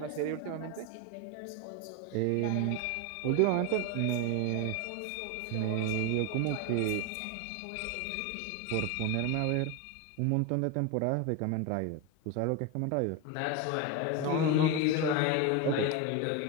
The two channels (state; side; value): different; both; correlation 0.02